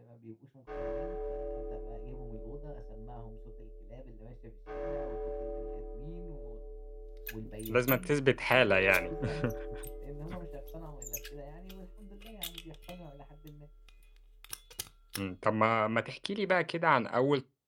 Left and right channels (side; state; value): both; identical; correlation 1.00